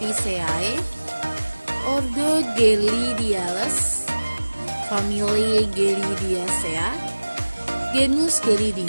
ordo Gelidiales, famili Gelidiacea, genus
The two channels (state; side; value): inverted; both; correlation -1.00